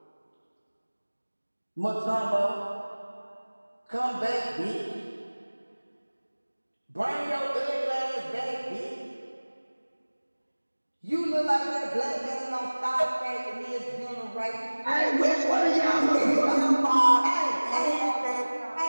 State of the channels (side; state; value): both; inverted; correlation -1.00